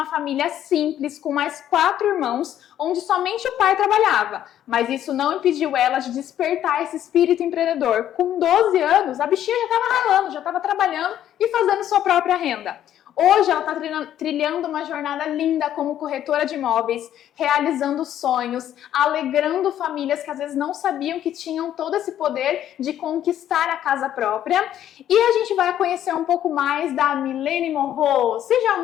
família simples, com mais 4 irmãos, onde somente o pai trabalhava. Mas isso não impediu ela de despertar esse espírito empreendedor. Com 12 anos, a bichinha já estava ralando, já estava trabalhando e fazendo sua própria renda. Hoje ela está trilhando uma jornada linda como corretora de imóveis, realizando sonhos, alegrando famílias que às vezes não sabiam que tinham todo esse poder de conquistar a casa própria. E a gente vai conhecer um pouco mais da Milene Morro. Seja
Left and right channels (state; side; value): quieter; right; 11.2 dB